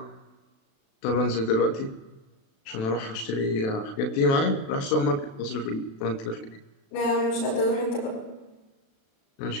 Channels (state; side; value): late; right; 36 ms